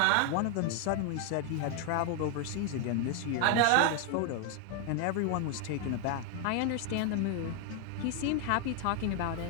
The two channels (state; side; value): different; both; correlation 0.01